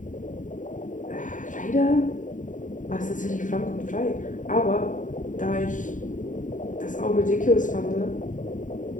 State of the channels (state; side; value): late; right; 0.37 ms